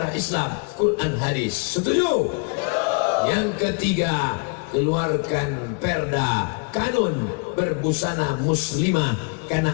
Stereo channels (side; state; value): right; quieter; 36.1 dB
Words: Islam, Quran, hadis. Setuju? Yang ketiga, keluarkan perda kanun berbusana muslimah, karena